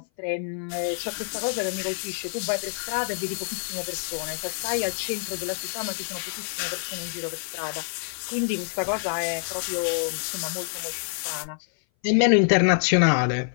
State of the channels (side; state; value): right; silent; 58 dB below the other